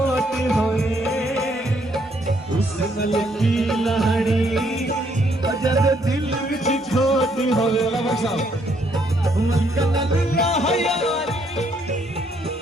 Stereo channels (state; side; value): normal; both; correlation 0.70